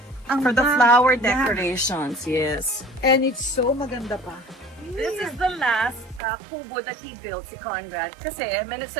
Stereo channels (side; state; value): left; drops out; at 6.2 s